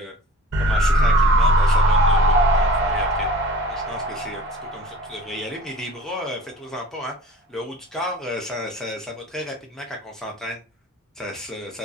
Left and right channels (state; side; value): normal; both; correlation 0.43